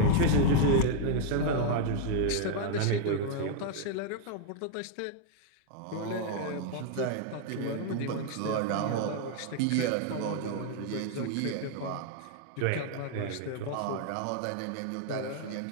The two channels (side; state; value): both; different; correlation 0.00